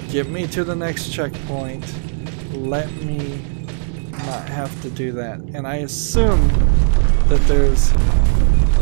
Get me to the next checkpoint. Let me not have to do that. And I assume that there's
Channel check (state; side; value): silent; left; digital silence